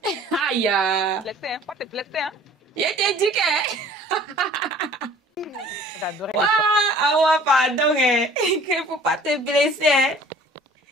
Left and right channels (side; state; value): both; normal; correlation 0.50